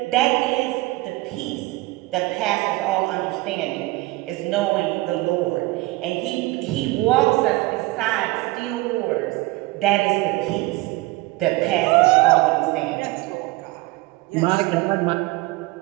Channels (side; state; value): left; quieter; 20.6 dB